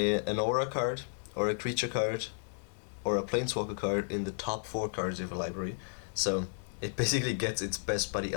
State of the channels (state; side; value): silent; right; digital silence